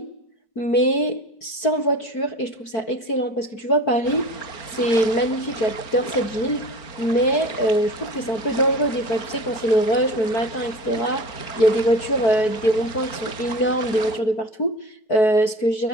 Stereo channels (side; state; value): right; late; 4.6 ms